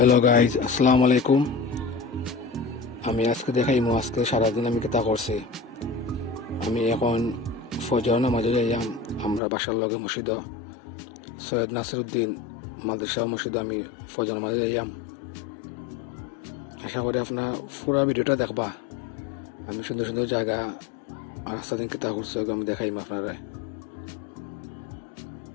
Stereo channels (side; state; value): right; drops out; at 9.4 s